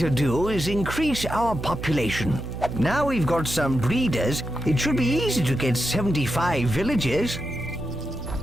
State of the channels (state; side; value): noise; right; hum, 7 dB below the sound